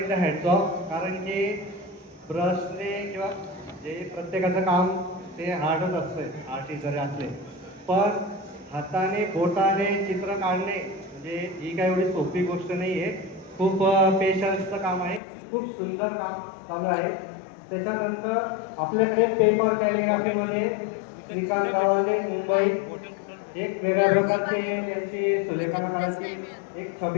हॅट्स ऑफ. कारण की ब्रशने किंवा जे प्रत्येकाचं काम ते हार्डच असतं आर्टिस्ट जरी असले, पण हाताने बोटाने चित्र काढणे म्हणजे ही काही एवढी सोपी गोष्ट नाही आहे. खूप पेशन्सचं काम आहे. खूप सुंदर काम चालू आहे. त्याच्यानंतर आपल्याकडे पेपर कॅलिग्राफीमध्ये श्रीकांत गवांडे मुंबई एक वेगळ्या प्रकारची त्यांची सुलेखनाकाराची एक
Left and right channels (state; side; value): drops out; right; at 15.2 s